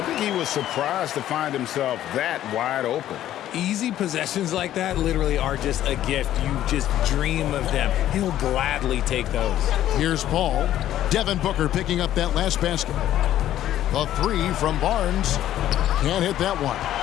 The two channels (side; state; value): right; quieter; 12.5 dB